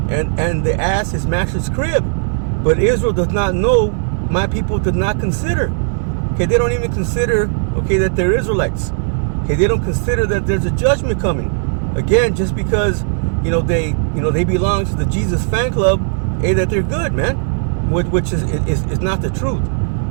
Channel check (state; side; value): silent; left; digital silence